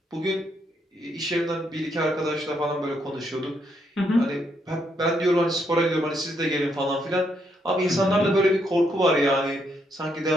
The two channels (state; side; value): normal; both; correlation 0.76